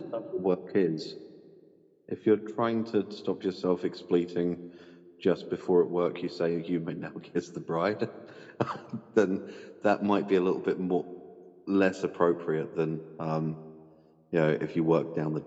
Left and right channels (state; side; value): identical; both; correlation 1.00